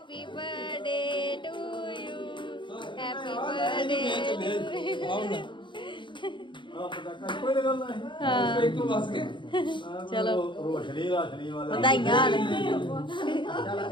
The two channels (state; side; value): late; right; 0.23 ms